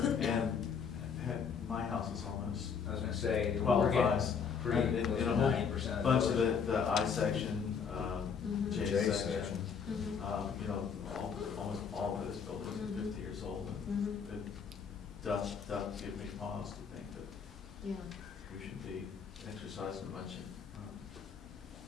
my house is almost I was gonna say, we're qualifies for, getting in close a to whole 90% of bunch of buildings. the I section, Mhm. J J section. section. Mhm. You know, almost all those buildings are Mhm. 50 years old. Mhm. It does give me pause to think that Yeah. we should be exercising a bunch of,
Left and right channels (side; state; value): right; quieter; 6.5 dB